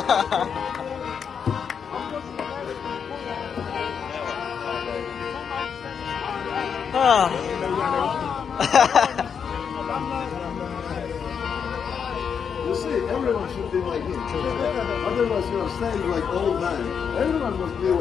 You see, everyone should be like him. Otherwise, you're saying like old man. Everyone must be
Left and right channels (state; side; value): quieter; right; 7.0 dB